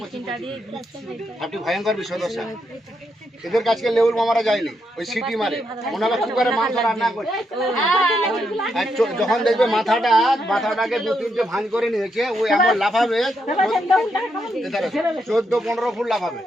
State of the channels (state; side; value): normal; both; correlation 0.80